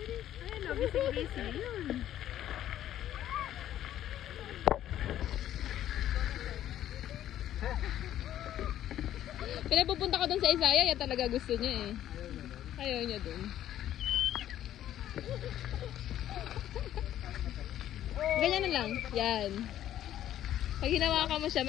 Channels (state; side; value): quieter; right; 11.9 dB